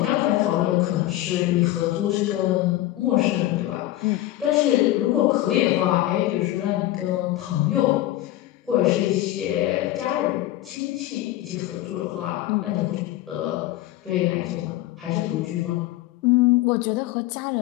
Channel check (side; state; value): right; quieter; 15.3 dB